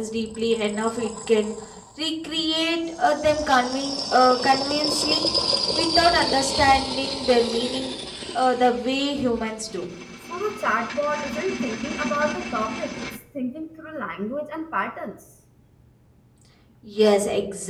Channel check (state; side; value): identical; both; correlation 1.00